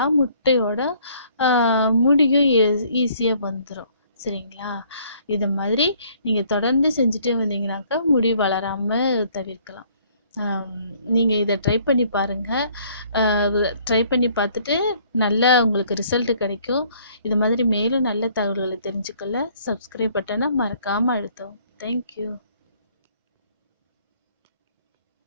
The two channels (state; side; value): inverted; both; correlation -0.61